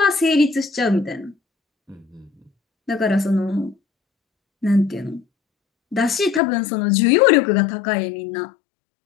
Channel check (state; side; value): drops out; right; at 6.4 s